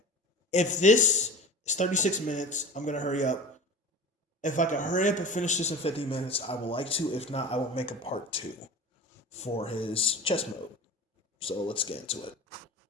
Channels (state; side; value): normal; both; correlation 0.35